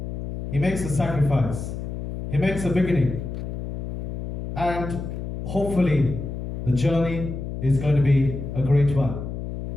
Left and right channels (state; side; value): noise; left; hum, 6 dB below the sound